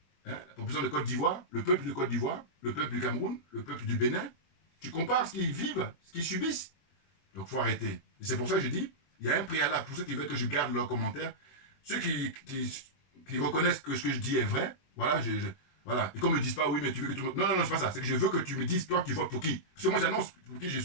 hein, la population de Côte d'Ivoire, le peuple de Côte d'Ivoire, le peuple du Cameroun, le peuple du Bénin. Tu compares ce qu'ils vivent, ce qu'ils subissent. Donc il faut arrêter. Et c'est pour ça que je dis, il y a un préalable pour ceux qui veulent que je garde leurs commentaires. Ceux qui reconnaissent que ce que je dis est vrai, voilà, voilà. Et qu'on ne me dise pas, oui, mais tu veux que tout le monde... Non, c'est pas ça. C'est que je veux que tu me dises, toi, tu votes pour qui. Parce que moi, j'annonce pour qui je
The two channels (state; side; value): late; right; 22 ms